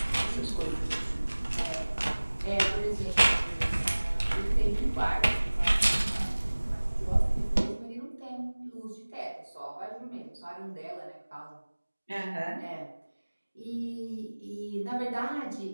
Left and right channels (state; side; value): inverted; both; correlation -1.00